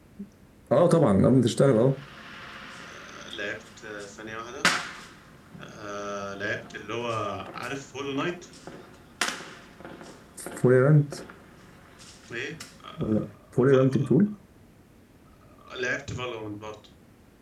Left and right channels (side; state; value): both; identical; correlation 1.00